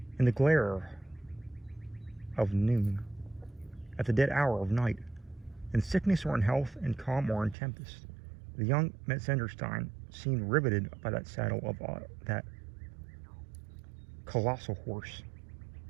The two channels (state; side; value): drops out; left; at 7.6 s